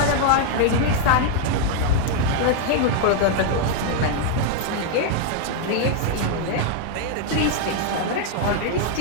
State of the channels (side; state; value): both; different; correlation 0.00